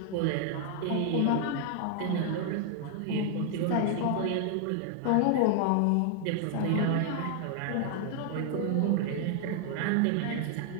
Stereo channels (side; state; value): both; different; correlation 0.00